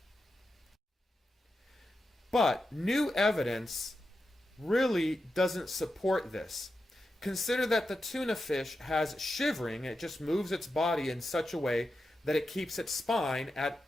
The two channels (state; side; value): normal; both; correlation 0.89